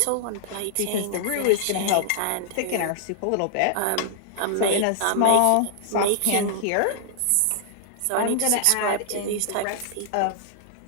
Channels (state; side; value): different; both; correlation -0.01